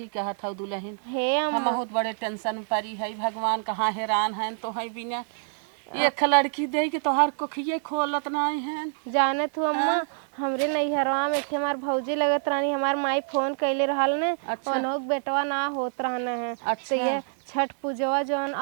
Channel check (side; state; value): left; silent; digital silence